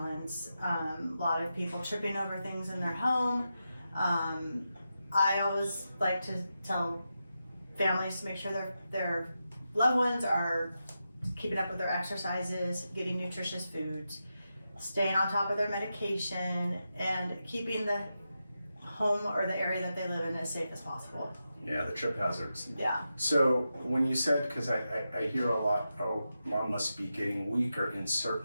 A lot of people tripping over things in their home. I always like to tell families to make sure their loved ones are keeping up with their exercises, getting nutritious foods, staying on top of their medication, and keeping the home or the area that they live in as safe as possible. Yeah, the trip hazards. Yeah. So when you said, because I hear a lot, oh, mom must be getting weaker in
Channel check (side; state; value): both; inverted; correlation -0.89